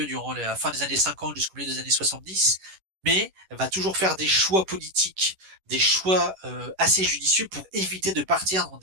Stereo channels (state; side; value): late; left; 11 ms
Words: durant la fin des années 50 jusqu'au milieu des années 70, mais va toujours faire des choix politiques, des choix assez judicieux pour éviter de partir dans